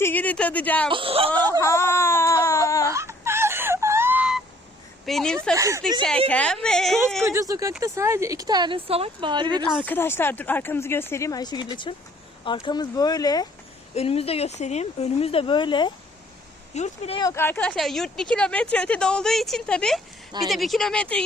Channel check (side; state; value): both; normal; correlation 0.60